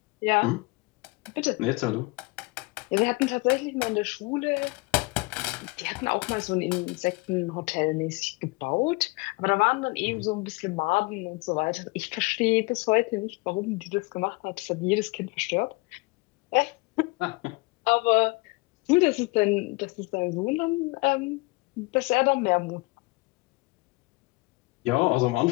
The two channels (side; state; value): right; quieter; 25.6 dB